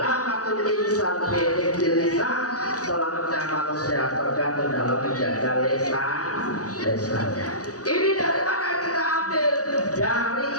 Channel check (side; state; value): right; late; 0.67 ms